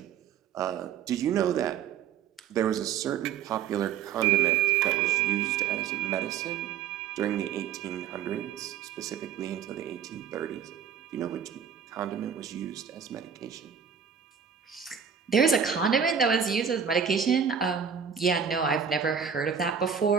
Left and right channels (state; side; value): quieter; left; 7.6 dB